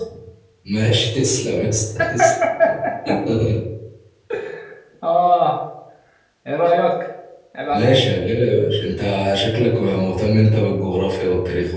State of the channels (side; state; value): both; identical; correlation 1.00